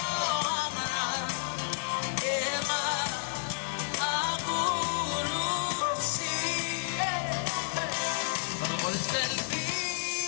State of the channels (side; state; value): right; silent; 57 dB below the other